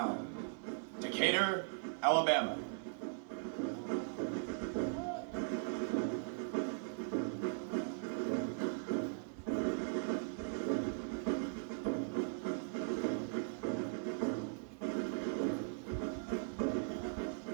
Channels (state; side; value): silent; left; 51 dB below the other